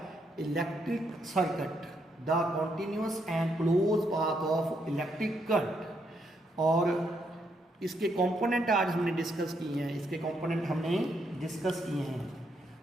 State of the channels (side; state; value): both; normal; correlation 0.76